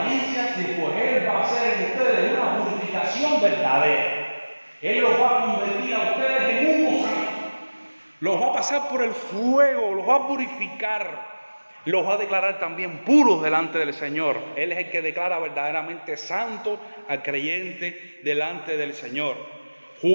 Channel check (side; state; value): both; inverted; correlation -1.00